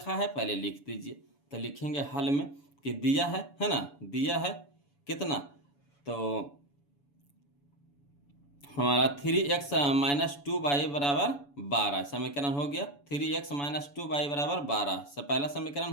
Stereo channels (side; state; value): right; late; 7.0 ms